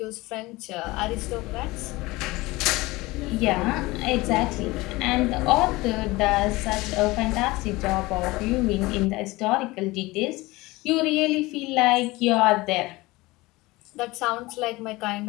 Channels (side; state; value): right; quieter; 21.1 dB